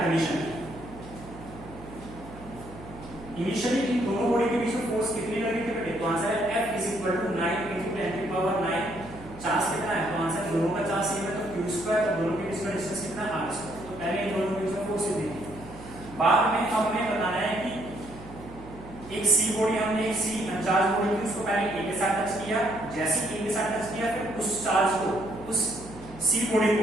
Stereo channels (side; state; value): right; noise; hum, 17 dB below the sound